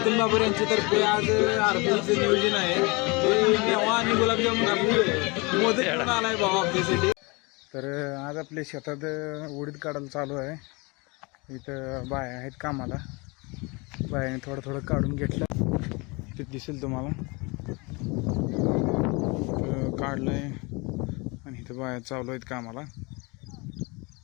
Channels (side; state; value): right; quieter; 27.3 dB